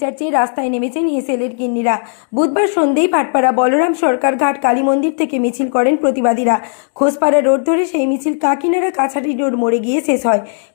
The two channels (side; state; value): right; silent; digital silence